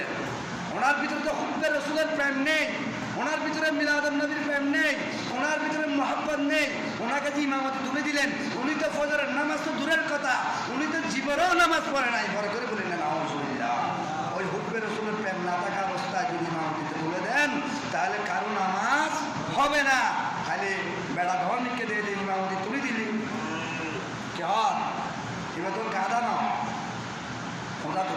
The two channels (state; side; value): identical; both; correlation 1.00